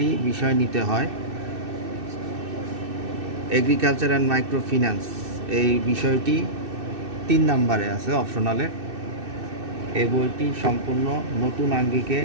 বিষয় নিতে হয়। এগ্রিকালচার অ্যান্ড মাইক্রো ফিন্যান্স এই বিষয়টি ৩ নম্বরে আছে অপশনালে। এই বইটি সম্পূর্ণ নতুন আঙ্গিকে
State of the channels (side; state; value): left; late; 2.6 ms